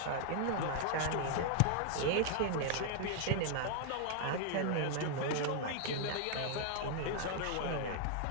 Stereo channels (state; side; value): different; both; correlation 0.00